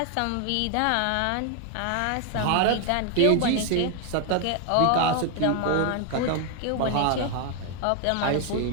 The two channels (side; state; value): both; different; correlation 0.01